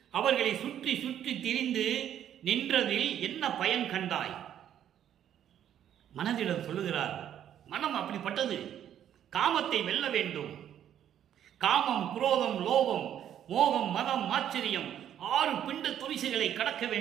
அவர்களை சுற்றி சுற்றி திரிந்து நின்றதில் என்ன பயன் கண்டாய். மனதிடம் சொல்லுகிறார், மனம் அப்படிப்பட்டது, காமத்தை வெல்ல வேண்டும். காமம், குரோதம், லோபம், மோகம், மதம், ஆச்சரியம் 6 பிண்ட துரிசுகளை கடக்க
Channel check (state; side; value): quieter; left; 10.3 dB